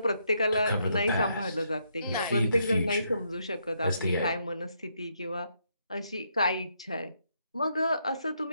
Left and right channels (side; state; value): both; inverted; correlation -0.77